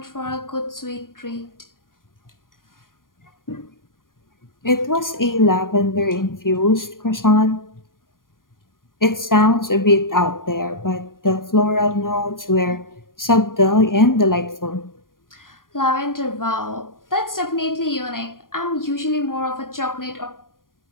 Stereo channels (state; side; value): late; right; 0.90 ms